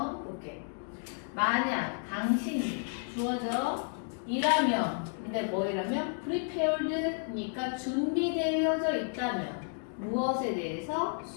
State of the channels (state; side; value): silent; right; 57 dB below the other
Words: 볼게. 만약 당신이 주어져 이라면 근데 뭐이라면 prepared니까 준비되어져 있다면 무엇에 대해서?